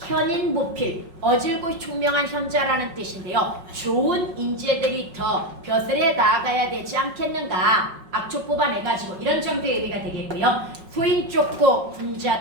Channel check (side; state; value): left; late; 5.4 ms